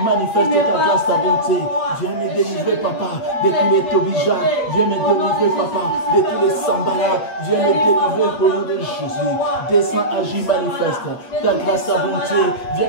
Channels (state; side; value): late; right; 8.5 ms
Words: Manifeste ta grâce, ta bonté. Viens me délivrer, Papa, de tous les Tobija. Viens me délivrer, Papa, de tous les Sambala. Viens me délivrer au nom de Jésus. Descends, agis, manifeste ta grâce, ta bonté.